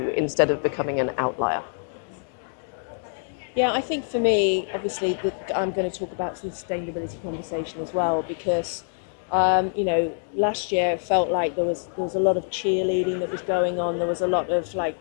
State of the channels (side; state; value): right; silent; digital silence